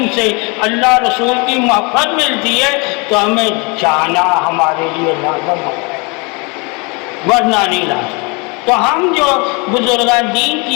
سے اللہ رسول کی محبت ملتی ہے تو ہمیں جانا ہمارے لیے لازم ہے, ورنہ نہیں لازم. تو ہم جو بزرگان دین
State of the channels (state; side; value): quieter; right; 30.0 dB